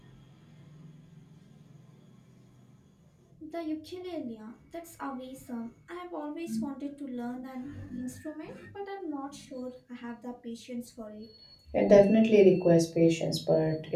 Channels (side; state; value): both; identical; correlation 1.00